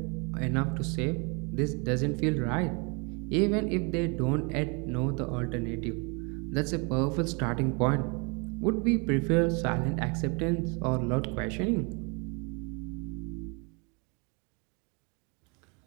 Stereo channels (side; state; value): left; quieter; 32.2 dB